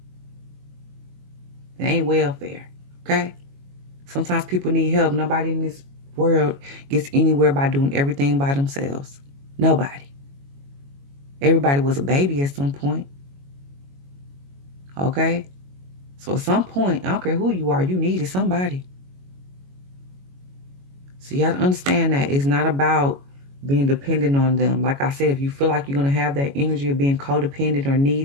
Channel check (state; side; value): late; left; 22 ms